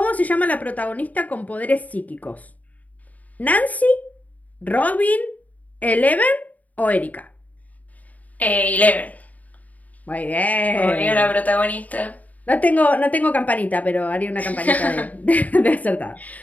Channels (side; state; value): right; late; 0.074 ms